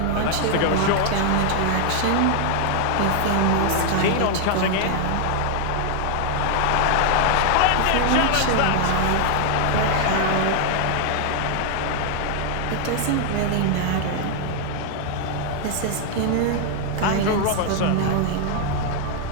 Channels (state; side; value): different; both; correlation 0.00